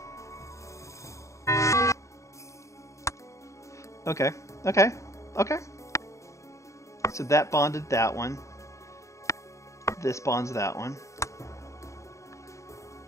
Okay. So that bonded that one. This bonds that one.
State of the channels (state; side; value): late; right; 0.15 ms